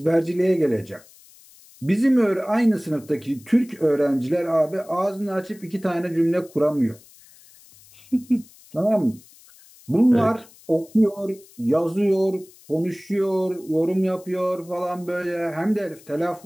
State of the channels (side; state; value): left; noise; hiss, 25 dB below the sound